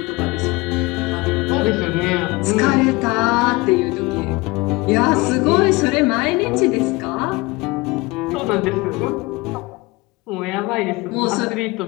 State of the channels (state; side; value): quieter; right; 23.3 dB